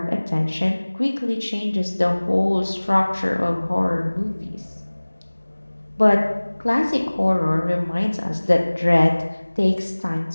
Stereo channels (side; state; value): both; inverted; correlation -1.00